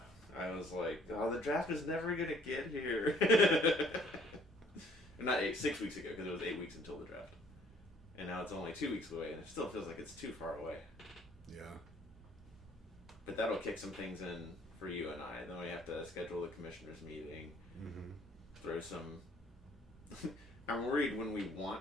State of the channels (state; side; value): normal; both; correlation 0.59